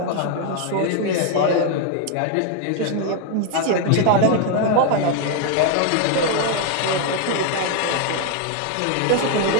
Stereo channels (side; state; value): both; different; correlation 0.00